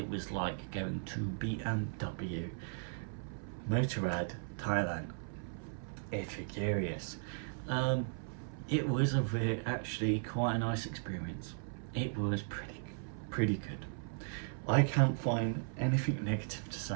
was like going to BMW Motorrad Thailand, if you're curious. It was actually quite a nice experience. It was pretty good. I can't find anything negative to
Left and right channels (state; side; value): silent; left; 53 dB below the other